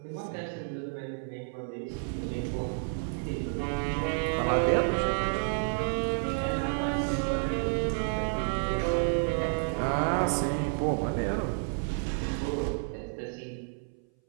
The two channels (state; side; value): silent; left; 58 dB below the other